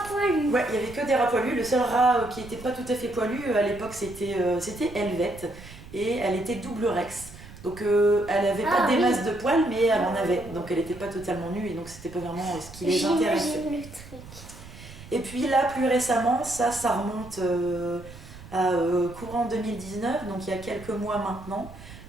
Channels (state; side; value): noise; right; rumble, 17 dB below the sound